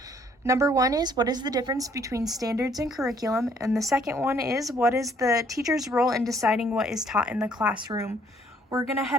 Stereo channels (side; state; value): both; normal; correlation 0.64